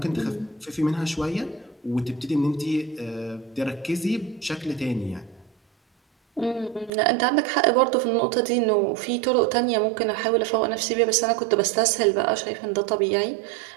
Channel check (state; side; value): drops out; left; at 6.9 s